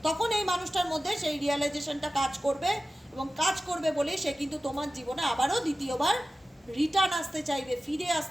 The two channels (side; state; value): both; normal; correlation 0.95